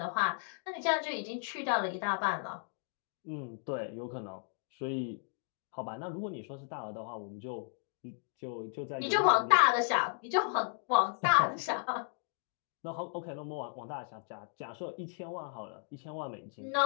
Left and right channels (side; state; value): right; silent; 55 dB below the other